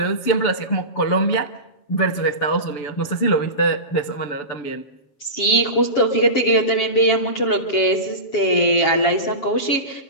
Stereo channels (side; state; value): right; late; 7.3 ms